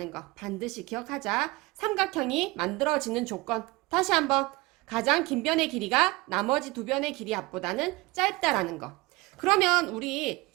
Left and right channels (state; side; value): quieter; left; 22.8 dB